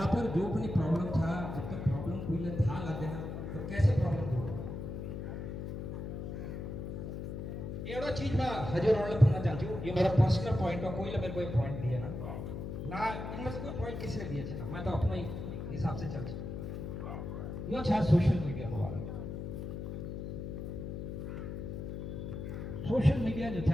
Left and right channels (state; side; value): noise; left; hum, 6 dB below the sound